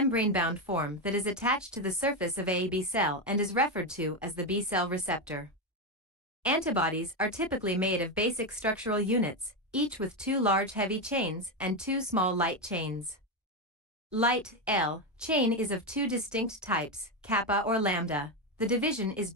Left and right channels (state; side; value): normal; both; correlation 0.10